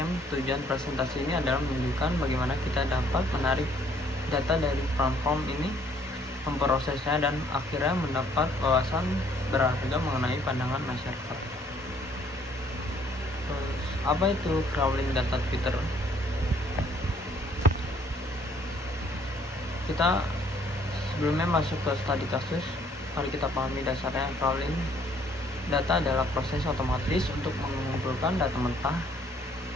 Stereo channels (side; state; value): both; normal; correlation 0.63